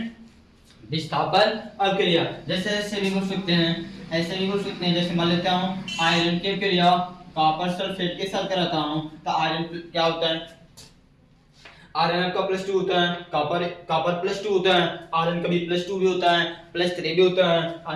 विस्थापन अपक्रिया। जैसे ऐसे भी बोल सकते हैं, जैसे मान लेता हूँ आयरन की क्रिया कॉपर सल्फेट के साथ कराता हूँ, तो आयरन क्या होता है, आयरन का +2 होता है, कॉपर +2 होता है, आयरन का भी +2 भी होता है, +3 भी होता है,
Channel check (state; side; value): identical; both; correlation 1.00